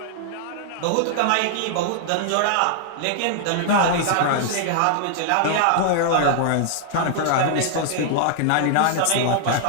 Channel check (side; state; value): both; different; correlation -0.01